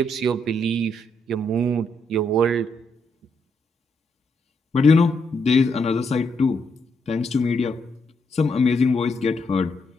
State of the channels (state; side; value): normal; both; correlation 0.78